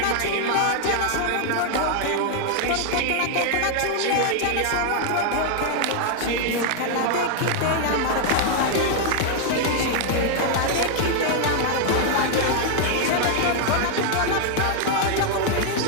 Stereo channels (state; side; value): different; both; correlation 0.00